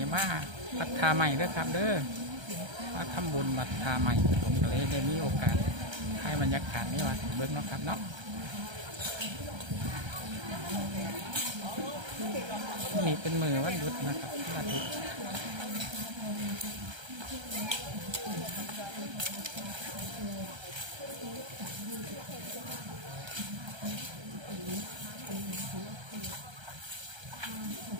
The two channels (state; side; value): late; left; 1.3 ms